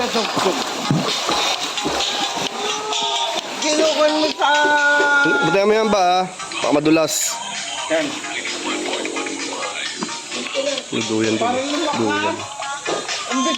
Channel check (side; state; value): both; identical; correlation 1.00